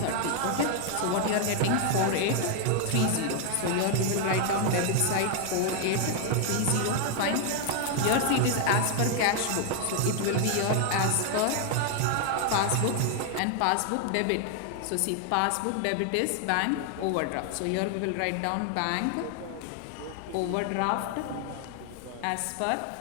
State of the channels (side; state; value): both; different; correlation 0.00